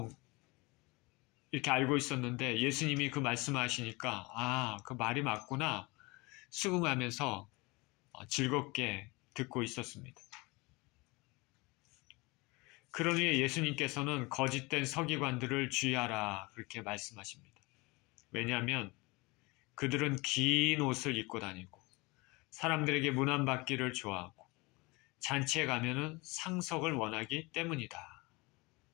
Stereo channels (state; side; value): quieter; right; 25.0 dB